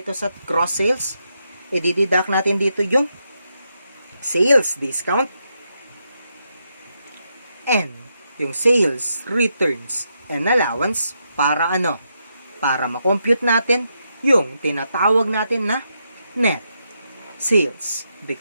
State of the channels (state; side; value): inverted; both; correlation -0.82